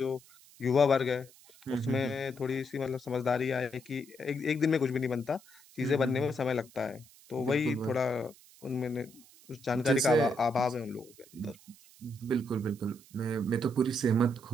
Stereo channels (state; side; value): noise; right; hiss, 24 dB below the sound